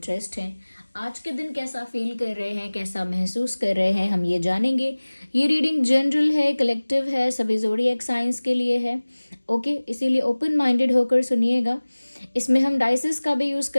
हैं। आज के दिन कैसा फील कर रहे हैं, कैसा महसूस कर रहे हैं, हम ये जानेंगे। ये रीडिंग जनरल है, कलेक्टिव है, सभी ज़ोडिएक साइंस के लिए है। ओके, इसीलिए ओपन माइंडेड होकर सुनिएगा। इसमें हम डाइसेस का भी यूज़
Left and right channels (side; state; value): both; inverted; correlation -1.00